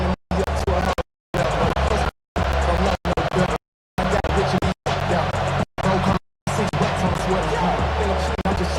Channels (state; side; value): identical; both; correlation 1.00